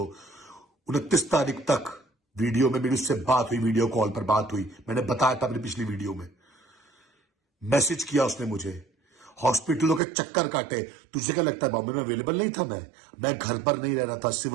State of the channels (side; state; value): left; drops out; at 10.0 s